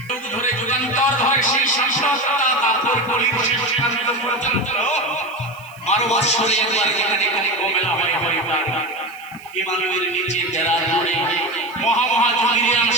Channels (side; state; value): right; noise; hiss, 25 dB below the sound